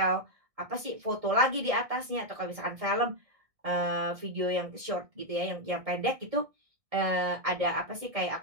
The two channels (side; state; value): left; late; 1.6 ms